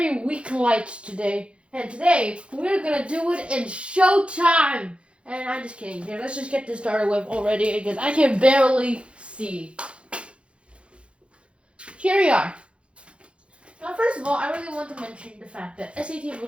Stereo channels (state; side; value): late; left; 0.059 ms